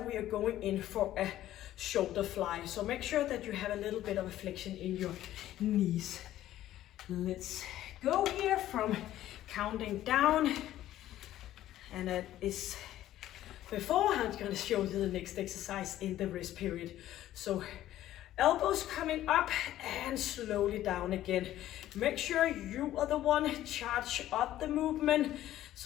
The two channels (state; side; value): quieter; right; 13.4 dB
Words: we are going in for a shoulder fly. So make sure that you have a little bit of a flexion in your knees. Let's go here from counting down. And that is before I'm going to show you the next exercise in the rest period. So elbows coming up and slowly down again. Make sure you are the one charge up the movement.